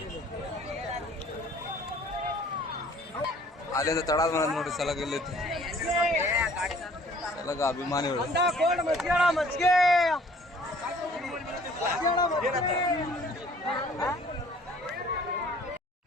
ಅಲ್ಲಿಂದ ತಡಾದ ಬಂದ್ ನೋಡ್ರಿ ಸಲಗ ಇಲ್ಲೈತಿ. ಸಲಗ ಅಭಿಮಾನಿಗಳು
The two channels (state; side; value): normal; both; correlation 0.55